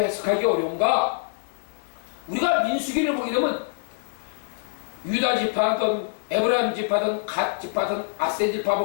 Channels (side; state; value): right; silent; 60 dB below the other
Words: 어려운가? 우리가 민수기를 보게 되면 유다 지파든 에브라임 지파든 갓 지파든 아셀 지파